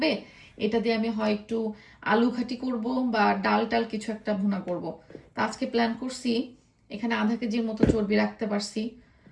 এটা দিয়ে আমি হয় একটু আলু ঘাটি করব বা ডাল টাল কিছু একটা ভুনা করব। তা আজকে প্ল্যান করছি, এখানে আধা কেজির মতো চর্বি রাখতে পারছি,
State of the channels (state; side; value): identical; both; correlation 1.00